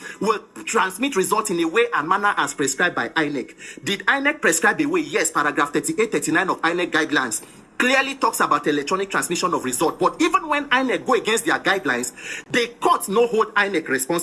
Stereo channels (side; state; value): both; identical; correlation 1.00